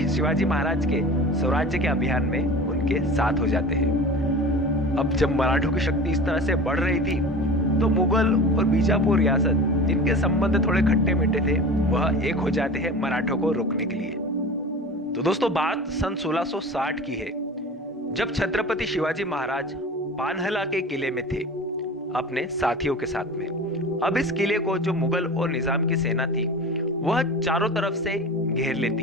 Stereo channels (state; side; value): normal; both; correlation 0.35